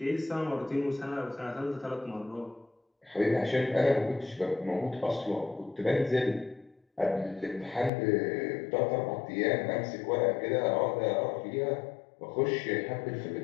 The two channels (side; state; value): right; drops out; at 7.9 s